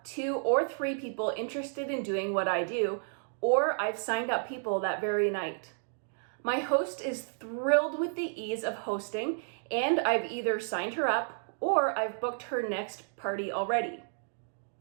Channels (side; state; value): left; silent; digital silence